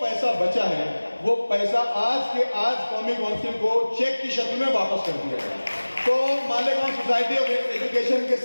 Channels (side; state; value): both; inverted; correlation -1.00